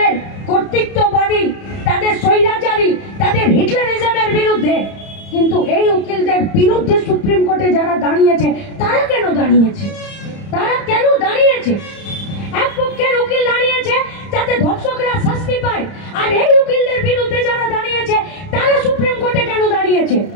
কর্তৃত্ববাদী, তাদের স্বৈরাচারী, তাদের হিটলারিজমের বিরুদ্ধে। কিন্তু এই উকিলদের বিরুদ্ধে সুপ্রিম কোর্টে যারা দাঁড়িয়েছে, তারা কেন দাঁড়িয়েছে? তারা কেন দাঁড়িয়েছে? এক পক্ষের উকিল দাঁড়িয়েছে যাতে ধর্ষকরা শাস্তি পায়, আর এই উকিলদের বিরুদ্ধে যারা দাঁড়িয়েছে তারা সুপ্রিম কোর্টে কেন দাঁড়িয়েছে?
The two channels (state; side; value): late; right; 30 ms